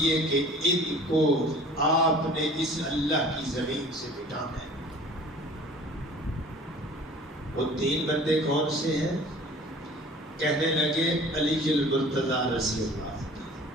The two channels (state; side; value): normal; both; correlation 0.46